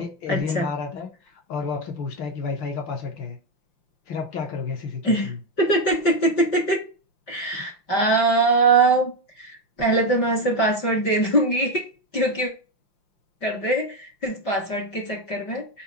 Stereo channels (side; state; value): right; late; 5.8 ms